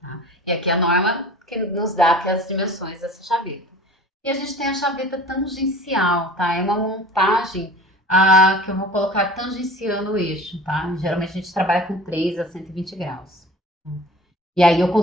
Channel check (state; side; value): normal; both; correlation 0.42